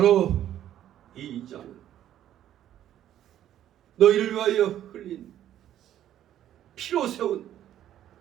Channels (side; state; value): left; quieter; 11.6 dB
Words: 이 잔은 너희를 위하여 흘린 피로 세운